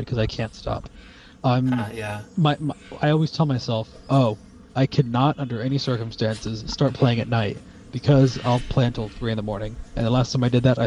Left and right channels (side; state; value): both; identical; correlation 1.00